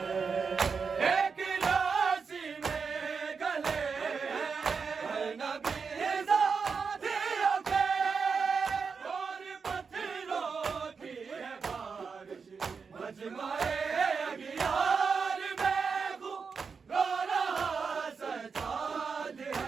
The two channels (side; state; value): left; quieter; 5.4 dB